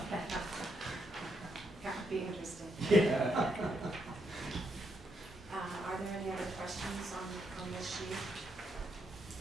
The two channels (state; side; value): normal; both; correlation 0.78